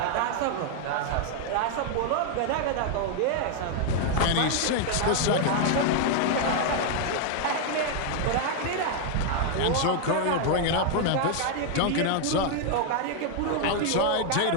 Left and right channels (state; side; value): different; both; correlation 0.00